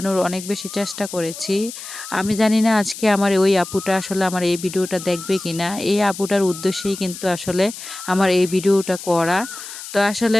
অনেক বেশি চেষ্টা করেছি। আমি জানি না আজকে আমার ওই আপুটা আসলে আমার এই ভিডিওটা দেখবে কিনা। এই আপুটার উদ্দেশ্যেই কিন্তু আসলে আমার এই ভিডিওটা করা। তো আসলে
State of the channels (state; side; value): noise; left; hiss, 12 dB below the sound